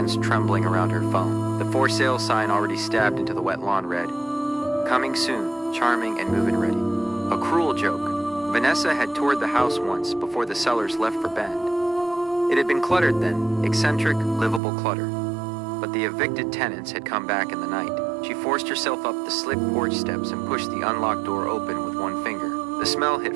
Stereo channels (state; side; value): drops out; left; at 14.6 s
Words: trembling around her phone. The for sale sign already stabbed into the wet lawn read, "Coming soon, charming and move-in ready." A cruel joke. Vanessa had toured the house once before the sellers left for Bend. It had been cluttered then, eccentric, livable clutter. But the evicted tenants had come back in the night. She forced herself up the slick porch steps and pushed the unlocked door open with one finger. The smell hit